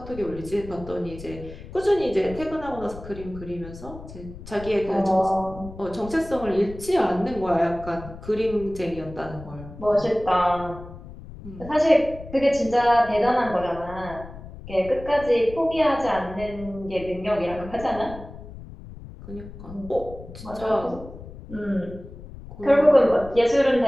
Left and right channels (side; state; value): left; noise; rumble, 14 dB below the sound